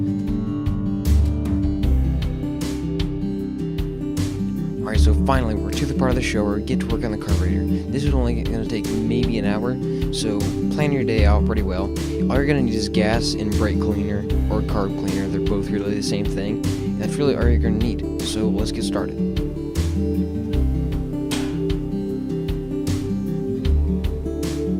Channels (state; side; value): identical; both; correlation 1.00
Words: Alright, so finally we're to the part of the show where we get to work on the carburetor. This is only going to take maybe an hour, so plan your day out pretty well. All you're going to need is gas and brake cleaner or carb cleaner. They're both really the same thing. And that's really all you're going to need. So let's get started.